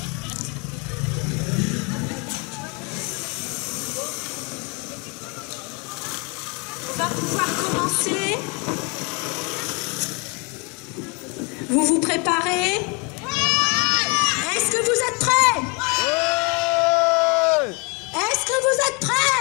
On va pouvoir commencer. Vous vous préparez? Est-ce que vous êtes prêts? Ouais. Est-ce que vous êtes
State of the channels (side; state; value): right; quieter; 31.7 dB